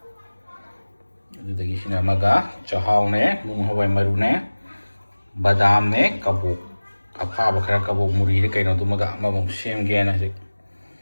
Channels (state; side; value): inverted; both; correlation -1.00